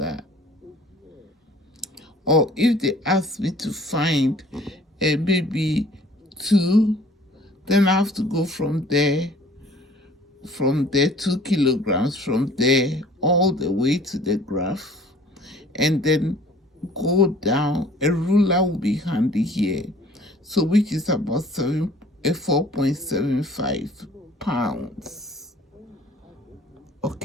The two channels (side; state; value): both; normal; correlation 0.52